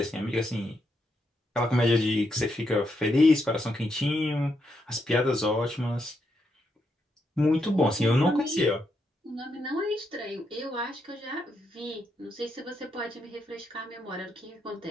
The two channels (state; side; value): normal; both; correlation 0.80